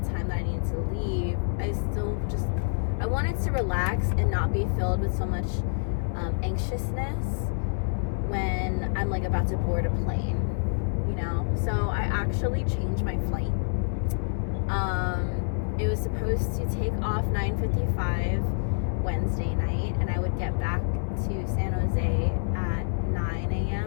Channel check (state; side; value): silent; right; 60 dB below the other